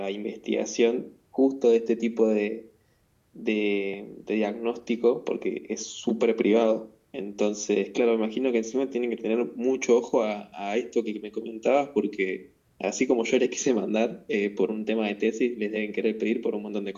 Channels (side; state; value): both; identical; correlation 1.00